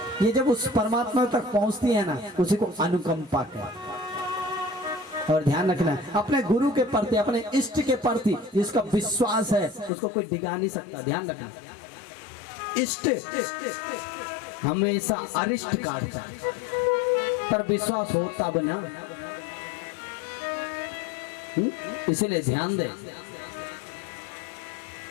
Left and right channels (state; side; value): drops out; right; at 9.9 s